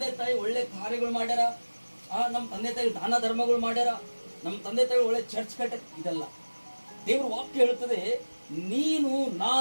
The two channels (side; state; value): both; inverted; correlation -1.00